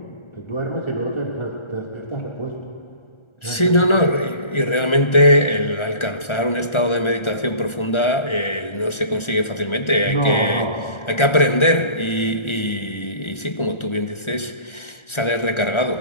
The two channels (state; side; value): late; right; 1.4 ms